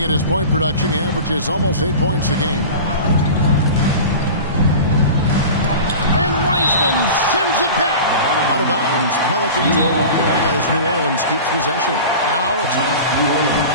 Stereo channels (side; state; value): both; inverted; correlation -0.34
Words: at his point production, he averages almost 8 points a game. And Wiseman sends it back. Out of bounds, Pelicans ball as New Orleans keeps possession. Now it's on New Orleans.